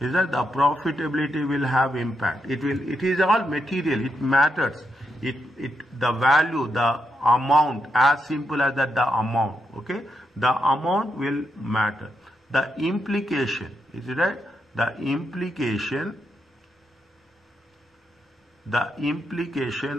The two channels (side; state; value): both; normal; correlation 0.82